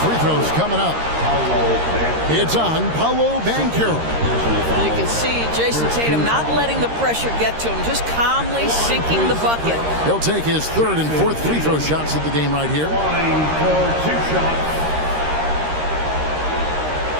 throws coming up. It's on Paolo Banchero. You can see Jason Tatum not letting the pressure get to him, just calmly sinking the bucket. He'll take his 3rd and 4th free throw shots of the game right here. Line for 2 shots.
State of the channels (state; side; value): late; left; 13 ms